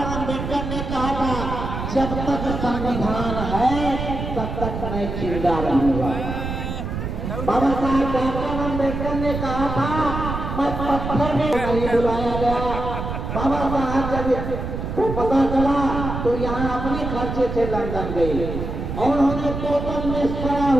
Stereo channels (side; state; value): right; noise; rumble, 5 dB below the sound